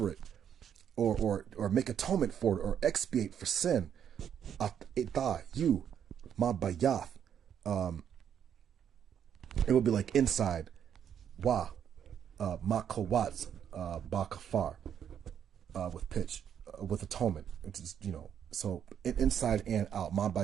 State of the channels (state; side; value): quieter; left; 8.8 dB